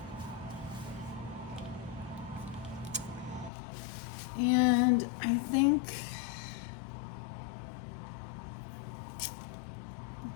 And I think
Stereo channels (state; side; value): drops out; right; at 3.5 s